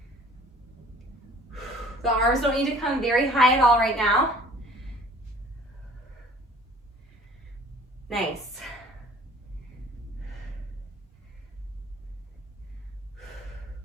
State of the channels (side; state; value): both; normal; correlation 0.50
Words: The arms don't need to come very high at all right now. Nice.